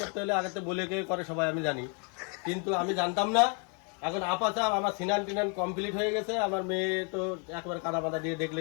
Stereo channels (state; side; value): quieter; right; 37.7 dB